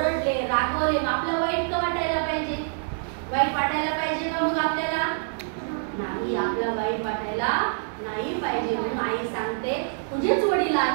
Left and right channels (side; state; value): left; silent; 61 dB below the other